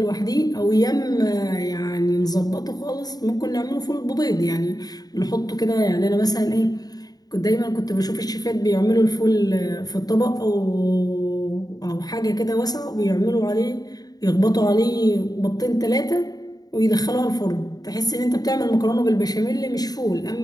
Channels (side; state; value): right; late; 0.19 ms